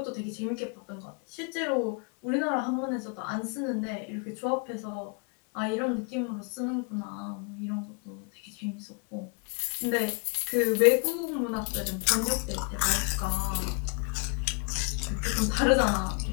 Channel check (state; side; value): quieter; right; 35.8 dB